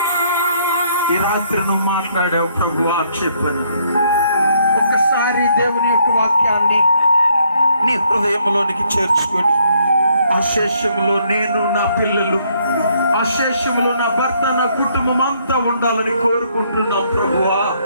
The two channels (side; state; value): both; inverted; correlation -0.69